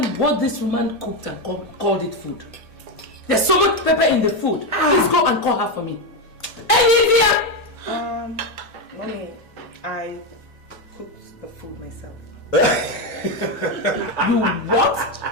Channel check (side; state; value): both; normal; correlation 0.09